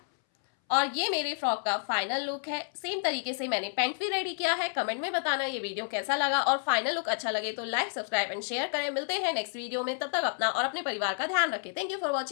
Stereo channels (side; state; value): right; silent; 58 dB below the other